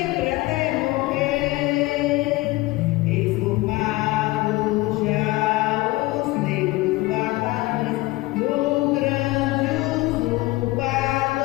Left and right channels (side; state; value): right; quieter; 20.4 dB